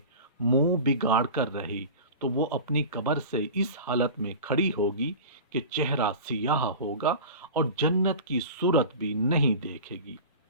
منہ بگاڑ کر رہی تو وہ اپنی قبر سے اس حالت میں کھڑی ہوگی کہ چہرہ سیاہ ہوگا اور جنت کی صورت بھی نہیں دیکھے گی۔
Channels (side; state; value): both; inverted; correlation -0.34